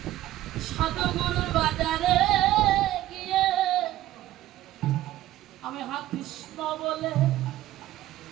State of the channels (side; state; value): left; quieter; 14.6 dB